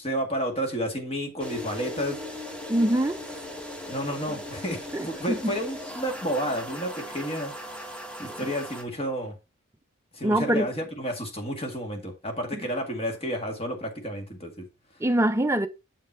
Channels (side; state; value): both; normal; correlation 0.49